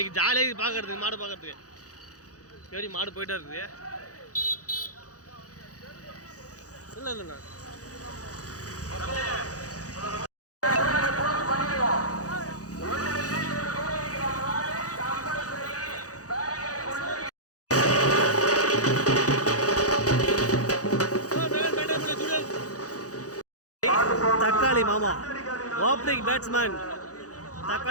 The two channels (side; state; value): right; late; 0.67 ms